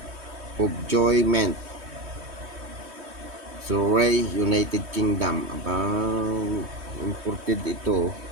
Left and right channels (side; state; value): left; late; 3.2 ms